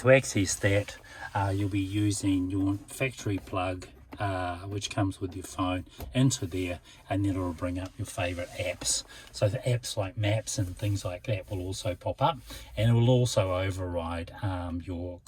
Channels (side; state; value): both; identical; correlation 1.00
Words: access that, you'll be using your factory plug, which comes with your phone, into there, and then it'll bring up your favorite apps. So the apps like maps and things like that will also pop up, and it will also override your